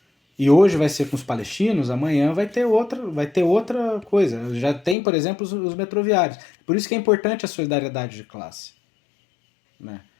E hoje vai ser com os palestinos, amanhã vai ter outra coisa. Já tem, por exemplo, os metroviários. Por isso que é importante a solidariedade de classe. Né?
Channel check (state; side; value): drops out; right; at 5.0 s